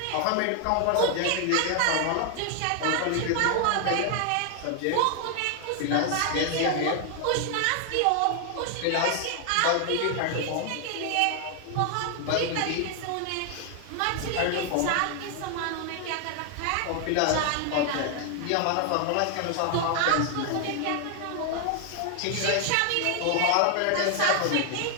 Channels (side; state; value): both; different; correlation 0.00